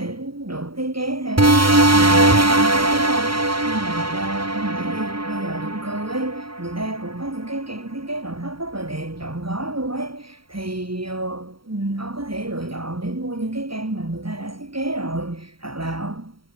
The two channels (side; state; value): left; late; 0.74 ms